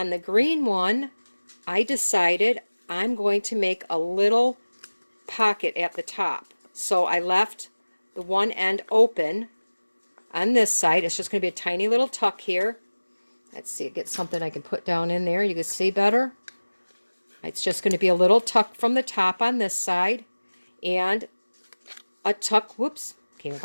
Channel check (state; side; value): inverted; both; correlation -1.00